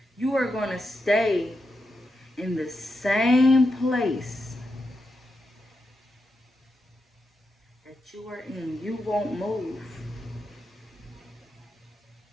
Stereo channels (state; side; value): normal; both; correlation 0.86